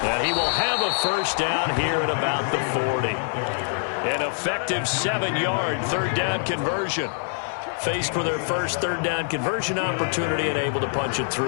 And he will have a first down here at about the 40. An effective 7-yard third down conversion. Faced for their first third down conversion opportunity and able to punch it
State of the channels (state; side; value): silent; right; 57 dB below the other